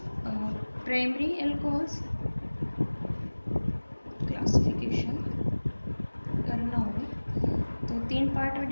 प्राइमरी अल्कोहल्स क्लासिफिकेशन करना हो तो तीन पार्ट में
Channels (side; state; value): both; inverted; correlation -1.00